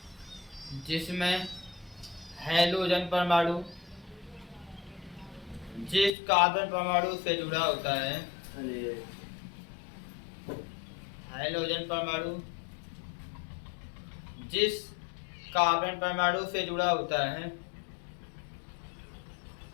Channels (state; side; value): drops out; right; at 6.1 s